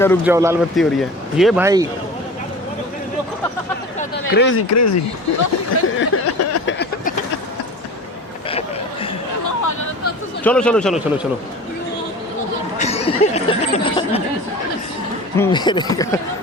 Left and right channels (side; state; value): both; normal; correlation 0.37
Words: रुक जाओ, लाल बत्ती हो रही है। ये भाई क्रेजी चलो